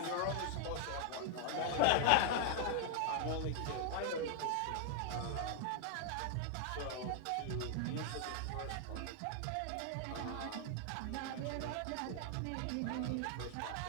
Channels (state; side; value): different; both; correlation 0.00